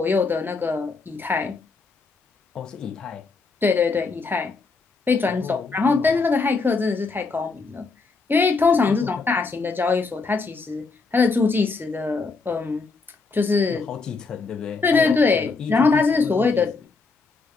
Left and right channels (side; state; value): right; quieter; 4.2 dB